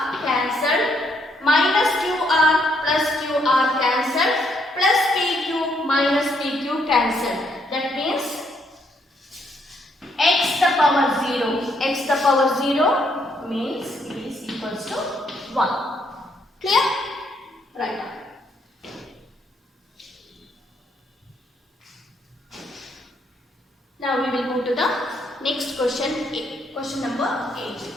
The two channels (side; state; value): both; normal; correlation 0.72